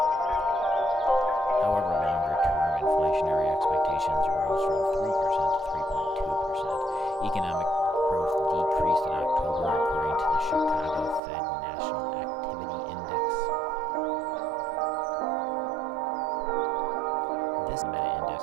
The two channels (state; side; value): drops out; left; at 11.2 s